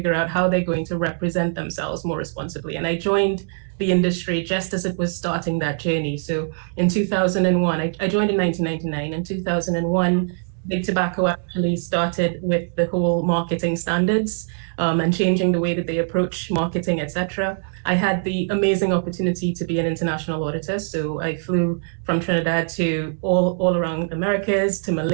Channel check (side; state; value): left; silent; digital silence